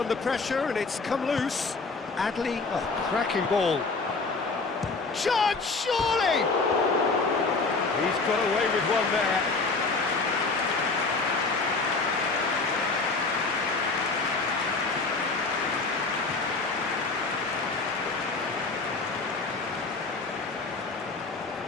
pressure and it's come loose. Adley, cracking ball. Chance, surely! He's got away with one there.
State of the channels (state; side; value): quieter; right; 3.9 dB